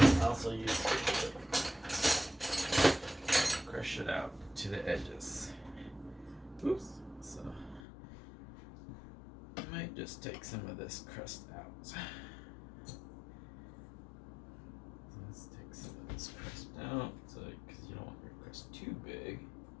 also use it to crush it out to the edges. Oops. So I might just take some of this crust out. Let's take some of this crust out, so because you don't want your crust too big.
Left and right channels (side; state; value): right; drops out; at 7.8 s